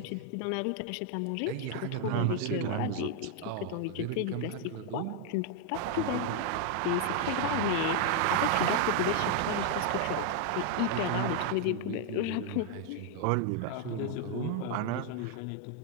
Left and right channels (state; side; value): different; both; correlation 0.00